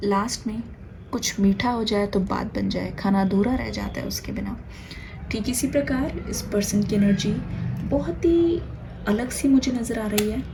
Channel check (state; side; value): identical; both; correlation 1.00